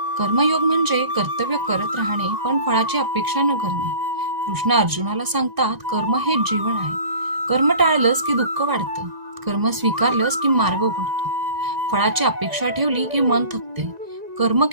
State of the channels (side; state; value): left; late; 1.9 ms